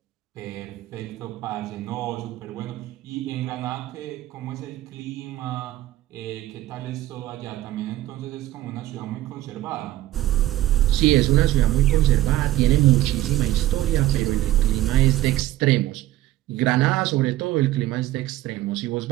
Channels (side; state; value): left; quieter; 15.0 dB